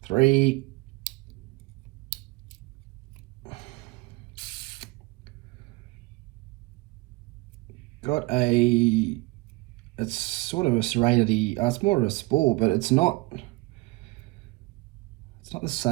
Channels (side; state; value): left; quieter; 23.7 dB